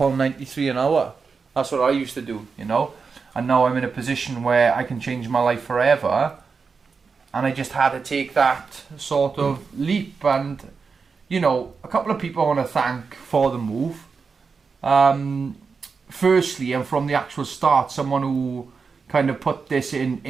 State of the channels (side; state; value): left; quieter; 5.1 dB